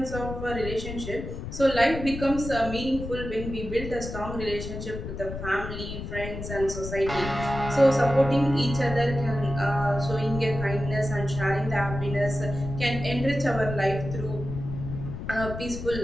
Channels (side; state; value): left; noise; rumble, 8 dB below the sound